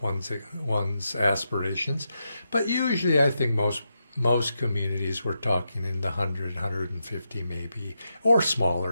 one's aspirations, but usually I think most communities we're talking in the 100, 150 maybe, or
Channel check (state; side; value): inverted; both; correlation -0.86